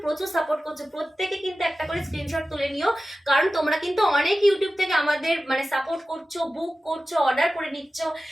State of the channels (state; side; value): normal; both; correlation 0.94